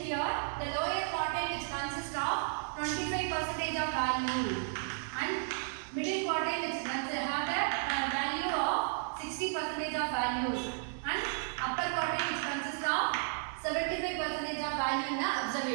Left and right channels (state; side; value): silent; left; digital silence